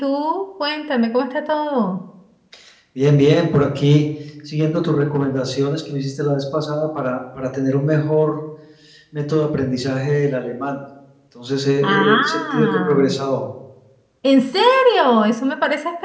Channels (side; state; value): both; identical; correlation 1.00